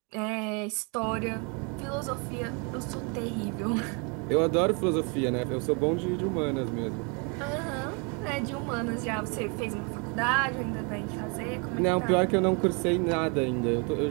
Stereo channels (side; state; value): left; quieter; 33.7 dB